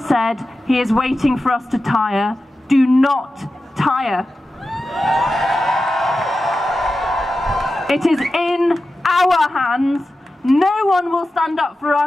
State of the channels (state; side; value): normal; both; correlation 0.93